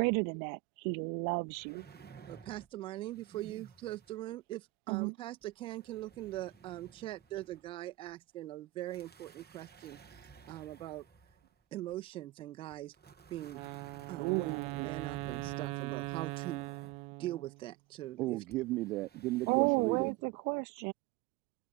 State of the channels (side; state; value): left; quieter; 19.9 dB